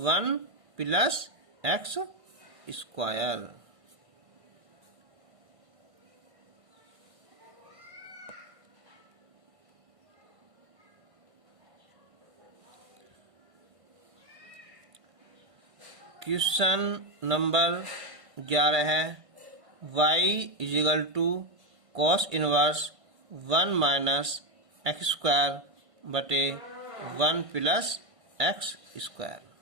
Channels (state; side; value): late; left; 1.5 ms